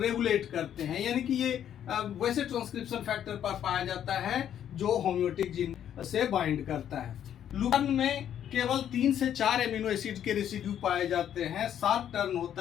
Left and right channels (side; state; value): right; quieter; 10.0 dB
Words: करते हैं, यानी कि ये वैसे ट्रांसक्रिप्शन फैक्टर पर पाया जाता है जो होम्योटिक जीन से बाइंड करता है। लूपन में केवल 3 से 4 एमिनो एसिड के रेसिड्यू पाए जाते हैं, 7 टर्न